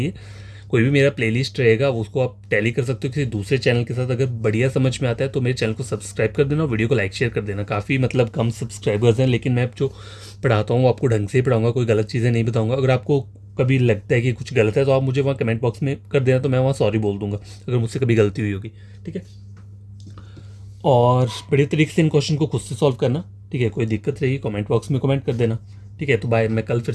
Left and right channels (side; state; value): both; identical; correlation 1.00